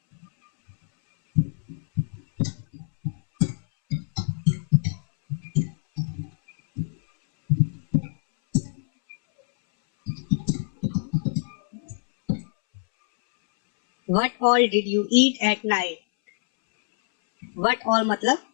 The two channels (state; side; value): silent; right; 62 dB below the other